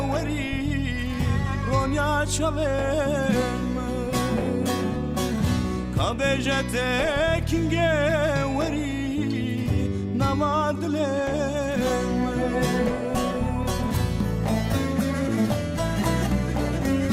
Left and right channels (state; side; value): identical; both; correlation 1.00